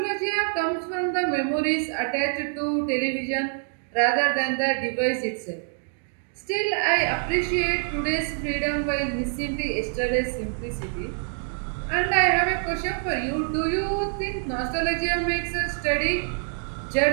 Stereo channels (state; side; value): silent; left; 59 dB below the other